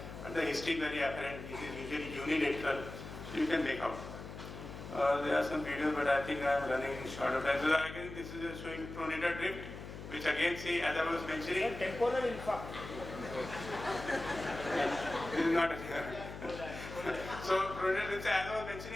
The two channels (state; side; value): noise; left; hum, 11 dB below the sound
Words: but the history is very apparent. It is usually unilateral, so you can make out. There are some videos, but I think I am running short of time. So again, this is showing pronator drift, which again, see, as I was mentioning, temporal infarct. This is not so pronator drift, as I was